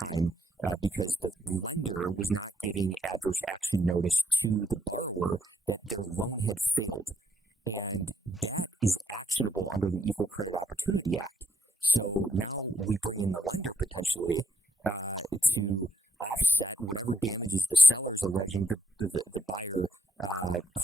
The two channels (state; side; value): normal; both; correlation 0.74